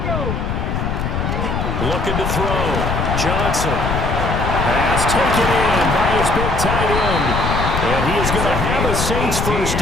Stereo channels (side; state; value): left; noise; rumble, 1 dB below the sound